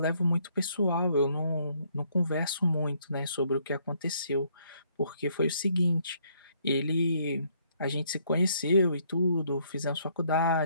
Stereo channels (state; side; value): inverted; both; correlation -0.68